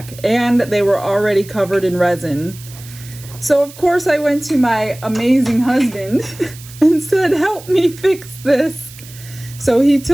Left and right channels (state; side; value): noise; right; hiss, 18 dB below the sound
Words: and they were already covered in resin. So of course I went to my amazing husband and said, help me fix this. So he